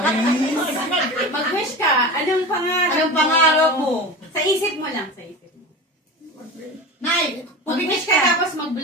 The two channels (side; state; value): both; normal; correlation 0.30